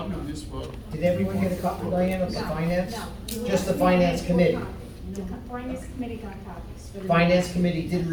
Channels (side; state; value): both; identical; correlation 1.00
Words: of this, but. Did everyone get a copy, Diane, of the finance? No. Just the finance committee. The finance committee got copies. for the- Finance committee did